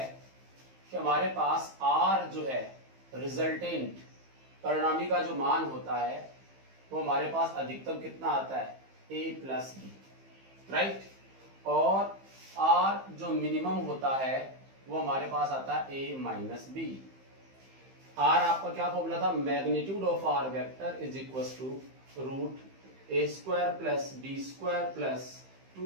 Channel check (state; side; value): late; left; 15 ms